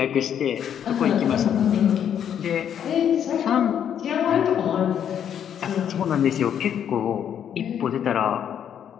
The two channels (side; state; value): right; quieter; 9.1 dB